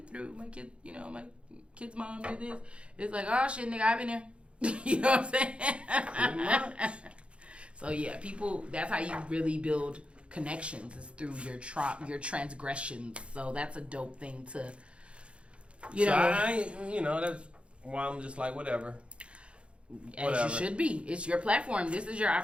through. My kid, my kid's mom did this. It's like, oh shit, nigga, I've been there. You know what I'm saying? Pretty much. So yeah, people, that's how you really build connections is through your transgressions. So that's a dope thing to, that's why I'm just like, whatever. As you should be. It's your platform. This is your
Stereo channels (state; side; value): late; left; 0.059 ms